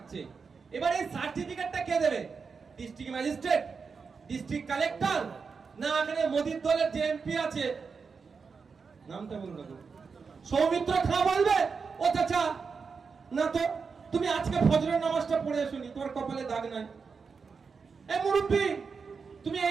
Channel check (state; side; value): quieter; left; 5.3 dB